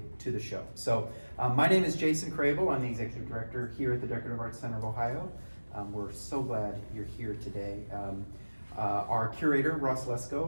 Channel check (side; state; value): both; inverted; correlation -1.00